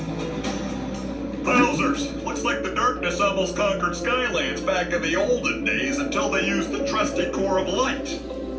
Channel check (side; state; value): both; identical; correlation 1.00